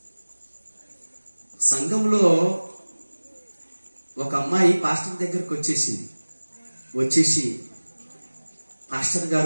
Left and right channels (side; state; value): both; inverted; correlation -1.00